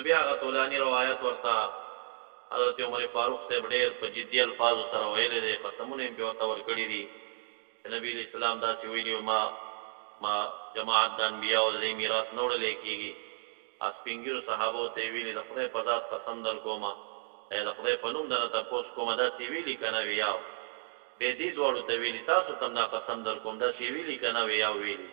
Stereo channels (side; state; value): left; silent; 56 dB below the other